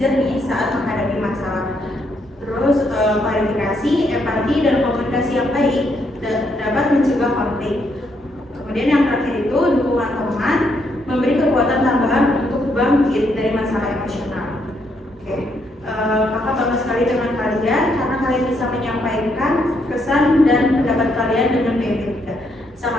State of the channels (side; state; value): both; normal; correlation 0.75